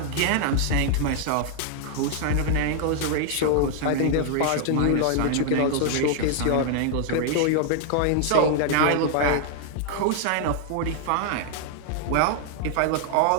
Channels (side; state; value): both; different; correlation 0.00